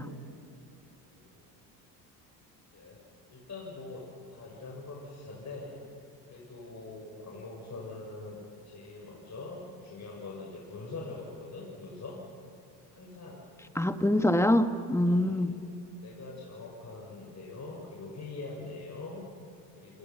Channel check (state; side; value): normal; both; correlation 0.79